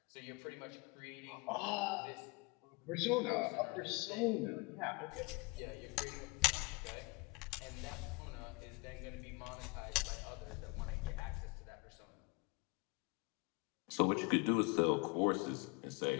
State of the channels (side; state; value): right; quieter; 26.8 dB